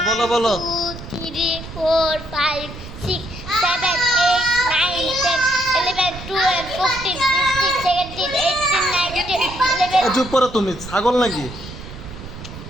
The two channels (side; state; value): right; noise; rumble, 13 dB below the sound